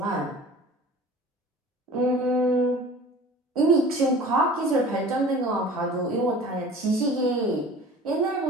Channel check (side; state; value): both; normal; correlation 0.43